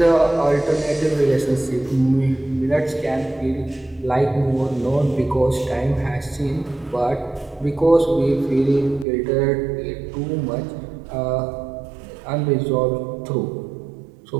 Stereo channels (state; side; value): drops out; left; at 9.1 s